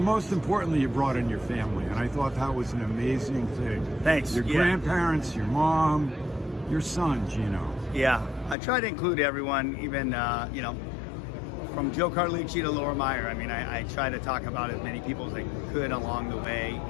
most importantly, you brought in your family, and I thought that was an amazing thing. Thanks. Your grandparents, your mom, your son, Gino. Yeah, I try to include everyone, even, from Joe Carlucci to Laura Meyer. I mean, I try to talk about as many people as I could along the way,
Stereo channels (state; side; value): drops out; right; at 8.6 s